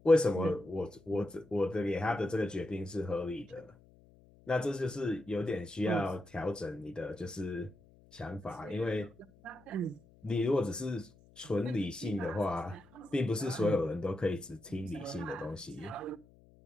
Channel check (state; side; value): noise; left; hum, 26 dB below the sound